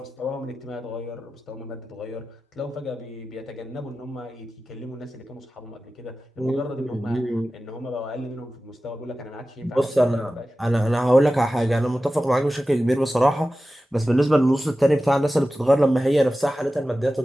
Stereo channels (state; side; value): normal; both; correlation 0.95